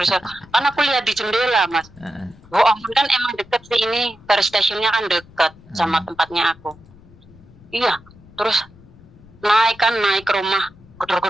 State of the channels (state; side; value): noise; left; rumble, 24 dB below the sound